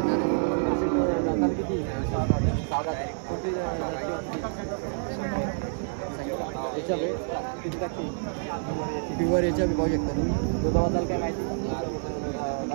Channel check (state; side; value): silent; left; digital silence